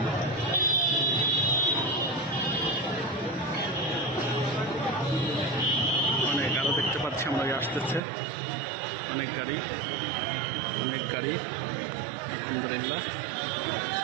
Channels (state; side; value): drops out; left; at 8.0 s